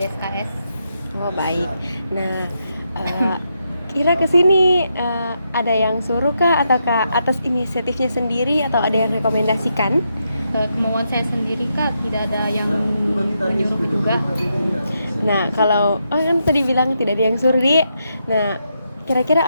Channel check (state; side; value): inverted; both; correlation -0.82